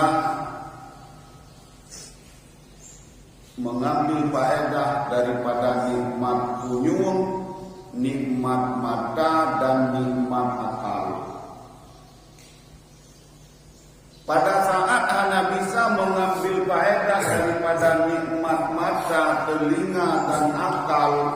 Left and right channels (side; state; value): both; identical; correlation 1.00